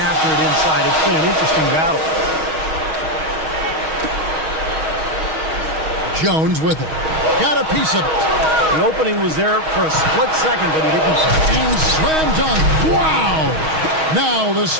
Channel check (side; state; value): left; late; 6.3 ms